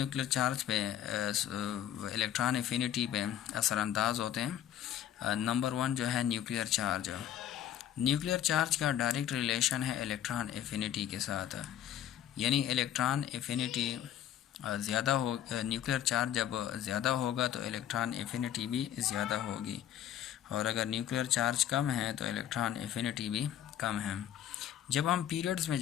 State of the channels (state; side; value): quieter; right; 11.0 dB